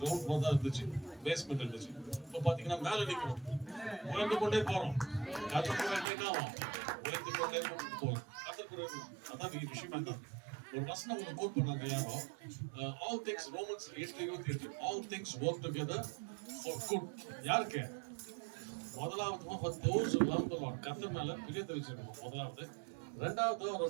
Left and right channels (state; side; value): drops out; left; at 6.1 s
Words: ஃப்ளோர் தான் இருந்துச்சு, பேஸ்மெண்ட் இருந்துச்சு. இப்போ பாத்தீங்கன்னா மேல நிற்கிறோம், உயர்ந்து கொண்டே போறோம். கர்த்தர் கூட என்ன ஆகும்? உயர்ந்து கொண்டே போறோம். கர்த்தர் கூட அதான் விஷயமா தான். ஒரு வசனம் ஒன்று கோட் பண்ணாங்க யாரோ, all things Romans 8:28 all things work together for good. யாருக்கு? முதலாவது for those who love the Lord, கர்த்தர் மேல பிரியத்தை வச்சிருக்கணும் முதலாவது. ரெண்டாவது